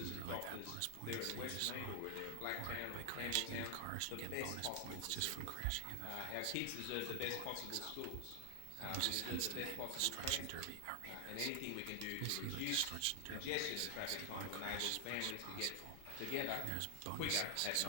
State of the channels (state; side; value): different; both; correlation 0.00